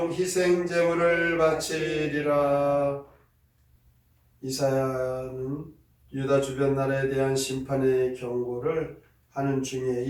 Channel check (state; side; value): identical; both; correlation 1.00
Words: 희생 제물을 바치리라. 이사야는 유다 주변 나라에 대한 심판의 경고를 하는 중에